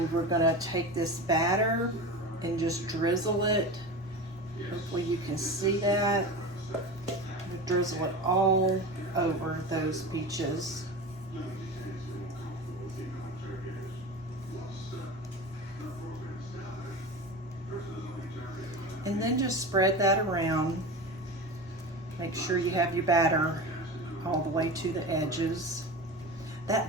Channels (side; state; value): both; normal; correlation 0.29